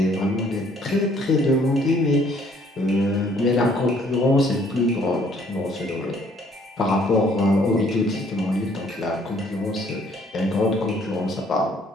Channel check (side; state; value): both; normal; correlation 0.62